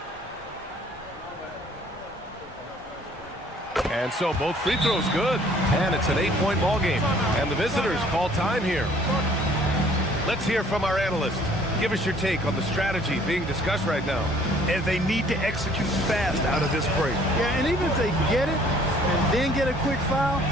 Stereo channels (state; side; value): normal; both; correlation 0.57